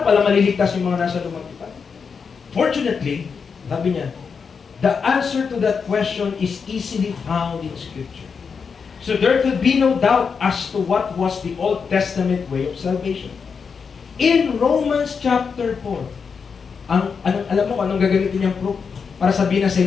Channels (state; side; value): quieter; right; 5.8 dB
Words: pala maliligtas yung mga nasa lumang tipan? Fortunately, sabi niya, the answer to that question is easily found in Scripture. So there could be no doubt as to what was the Old Testament way of salvation. In Romans chapter 4, alam mo anong gagamitin niyang proof para sabihin na